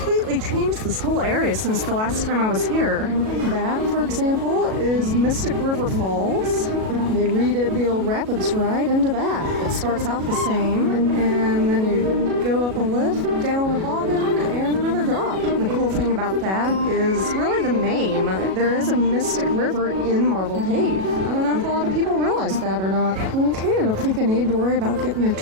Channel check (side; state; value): left; late; 37 ms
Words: changed this whole area since the last time I was here. That, for example, is Mystic River Falls. They redid the old rapids ride into that. It starts out the same, and then you go up a lift, down a bobbin, and another drop. And the cool thing about that is really the name. There is a Mystic River in Marble Cave. I don't know if a lot of people realize that or not. Okay, I don't think I need to worry about getting there